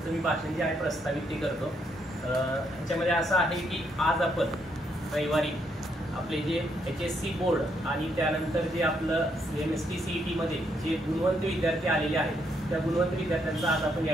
मी भाषण जे आहे प्रस्तावित ते करतो. ह्याच्यामध्ये असं आहे की आज आपण रविवारी आपले जे HSC बोर्ड आणि त्यानंतर जे आपलं MST CET मध्ये जे गुणवंत विद्यार्थी आलेले आहेत त्या गुणवंत विद्यार्थ्यांचा आज आपण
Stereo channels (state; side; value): normal; both; correlation 0.75